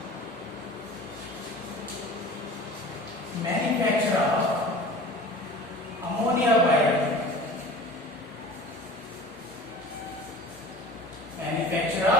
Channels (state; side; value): normal; both; correlation 0.40